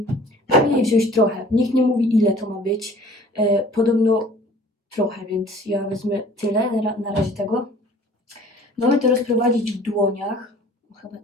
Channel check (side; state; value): both; normal; correlation 0.50